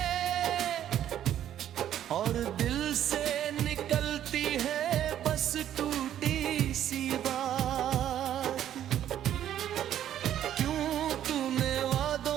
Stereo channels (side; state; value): left; quieter; 11.0 dB